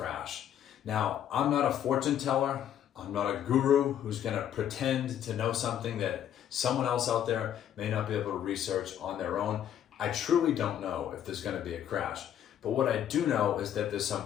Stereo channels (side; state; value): right; quieter; 10.2 dB